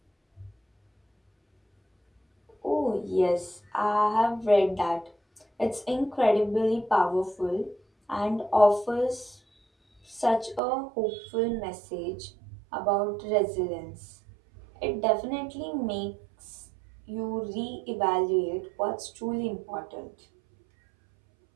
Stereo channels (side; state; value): left; drops out; at 10.6 s